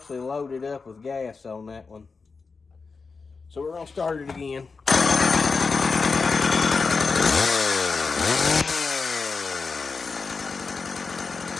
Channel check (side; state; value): right; quieter; 4.6 dB